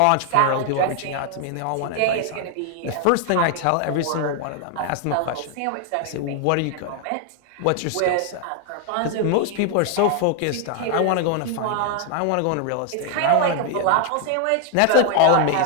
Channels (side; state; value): both; different; correlation 0.00